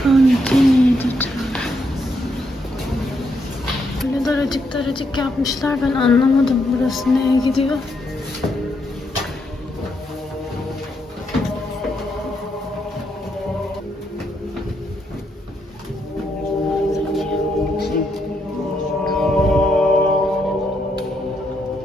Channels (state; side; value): normal; both; correlation 0.77